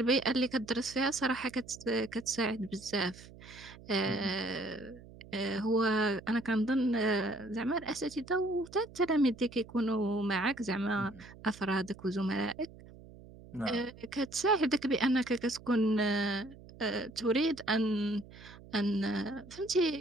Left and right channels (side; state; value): right; noise; hum, 19 dB below the sound